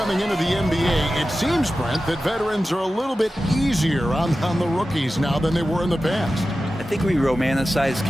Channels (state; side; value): normal; both; correlation 0.94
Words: into the NBA, it seems, Brent, that veterans are a little bit easier on the rookies now than they were in the past. I think we romanticize,